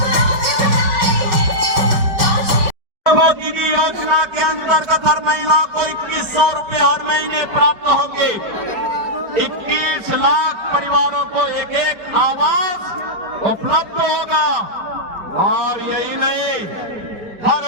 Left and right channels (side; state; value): left; late; 5.4 ms